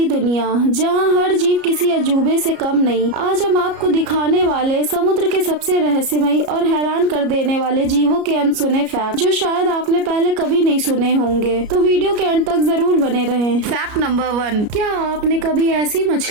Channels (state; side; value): late; left; 33 ms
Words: दुनिया जहां हर जीव किसी अजूबे से कम नहीं। आज हम आपको दिखाने वाले समुद्र के सबसे रहस्यमयी और हैरान कर देने वाले जीवों के अनसुने फैक्ट जो शायद आपने पहले कभी नहीं सुने होंगे, तो वीडियो के अंत तक जरूर बने रहें। Fact number 1। क्या आपने कभी ऐसी